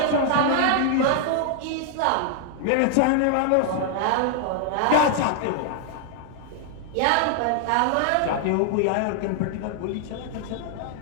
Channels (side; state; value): both; different; correlation 0.00